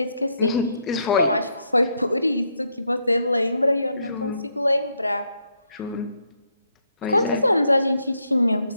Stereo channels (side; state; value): both; inverted; correlation -0.76